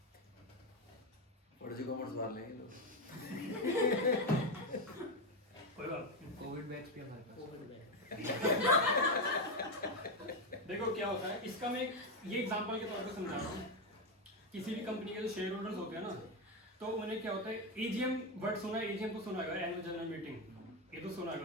और जो कॉमर्स वाले हैं लोग कोई बात नहीं। कोविड बैच भी हमारे पास। देखो क्या होता है, इसका मैं ये एग्जांपल के तौर पे समझा रहा हूँ। किसी भी कंपनी के जो शेयर होल्डर्स होते हैं ना, तो उन्हें क्या होता है, एजीएम वर्ड सुना है, एजीएम तो सुना है, एनुअल जनरल मीटिंग, ये तो सुना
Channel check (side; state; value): both; normal; correlation 0.09